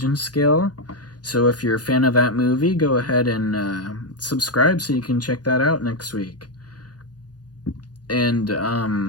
scale. So if you're a fan of that movie, go ahead and subscribe so you can check that out next week. And did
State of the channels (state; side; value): late; right; 0.69 ms